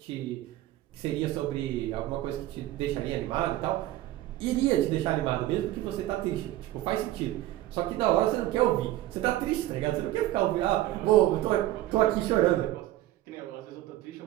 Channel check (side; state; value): left; quieter; 15.1 dB